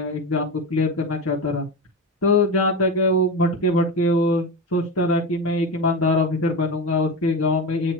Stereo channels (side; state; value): both; normal; correlation 0.21